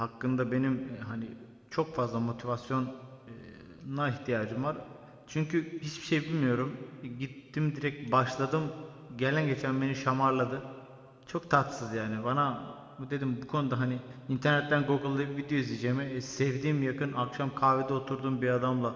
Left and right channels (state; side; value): identical; both; correlation 1.00